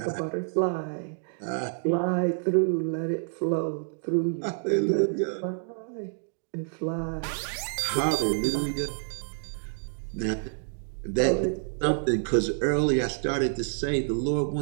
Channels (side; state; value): left; silent; digital silence